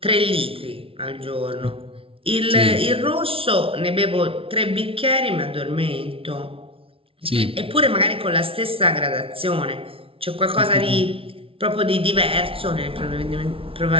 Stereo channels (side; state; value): left; late; 0.26 ms